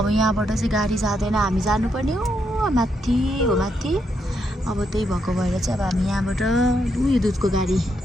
यहाँबाट चाहिँ गाडी जाँदैन। हामी जानुपर्ने हो माथि हो माथि। अब त्यही भएको भएर चाहिँ अब हामी यहाँबाट उयो दुधको गाडी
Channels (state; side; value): normal; both; correlation 0.79